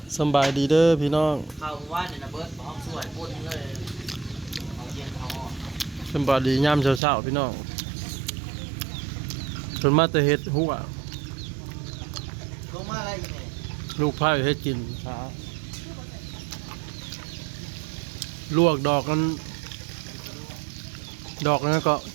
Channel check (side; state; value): left; drops out; at 7.0 s